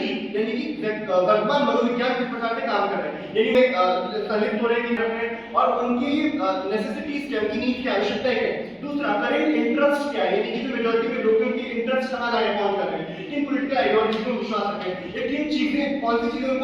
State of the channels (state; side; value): identical; both; correlation 1.00